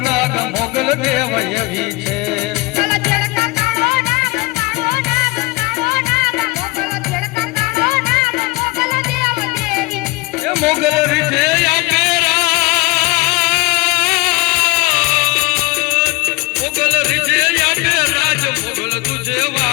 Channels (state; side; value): quieter; right; 23.8 dB